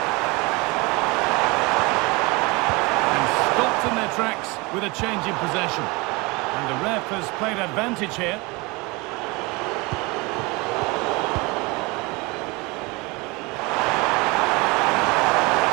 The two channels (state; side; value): quieter; left; 25.7 dB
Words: And stopped in their tracks with a change in possession. And the ref has played advantage here.